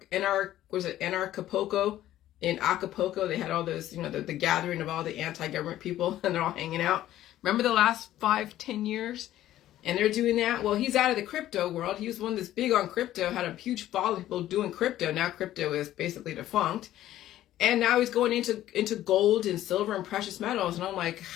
Acapulco. In Acapulco, they had all those, the gathering of all the anti-government people, and they're all hanging out. Remember the last 5-10 years? And they're doing that. Well, he's out of the crypto world. He was one that's big on crypto, had a huge following of people doing crypto. Now crypto is basically defunct. And now he's going into gold and silver and precious metals. And I'm like,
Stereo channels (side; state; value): right; quieter; 13.4 dB